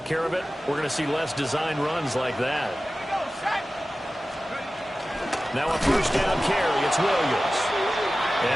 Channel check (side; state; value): both; normal; correlation 0.96